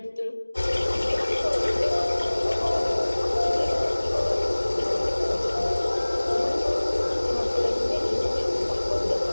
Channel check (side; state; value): both; inverted; correlation -1.00